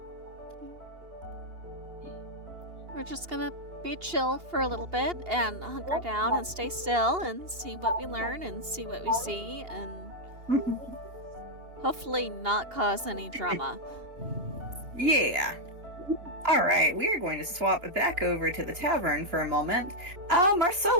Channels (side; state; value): left; late; 2.8 ms